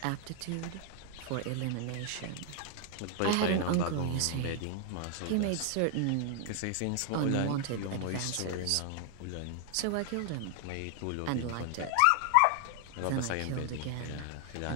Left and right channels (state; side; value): different; both; correlation 0.00